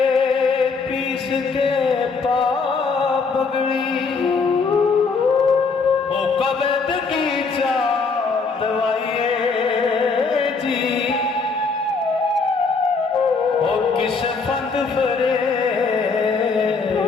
पीस के पा बगड़ी ओ कबद की चा दवाइए जी ओ किस फंद फरे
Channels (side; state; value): right; quieter; 4.7 dB